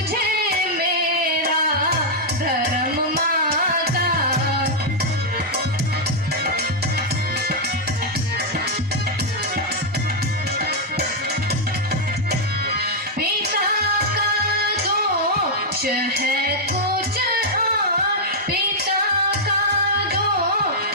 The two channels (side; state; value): both; normal; correlation -0.05